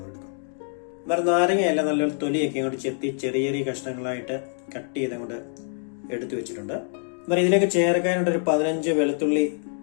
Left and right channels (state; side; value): silent; right; digital silence